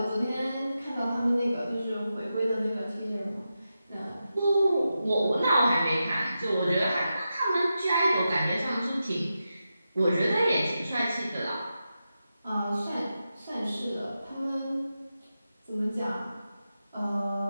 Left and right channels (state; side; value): inverted; both; correlation -0.90